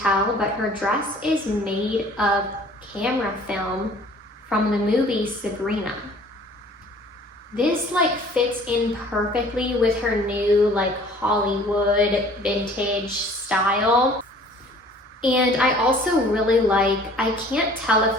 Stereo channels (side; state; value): both; normal; correlation 0.51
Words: but her dress is made of camera film from the movie Sabrina. This like fits in perfectly with her new like Hollywood vintage style. And I also really like, I can't tell if